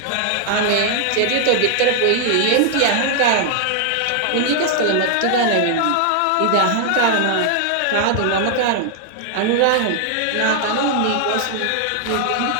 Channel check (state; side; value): different; both; correlation 0.00